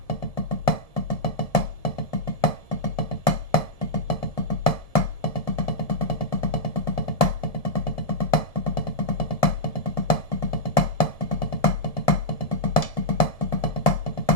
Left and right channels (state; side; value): late; right; 1.7 ms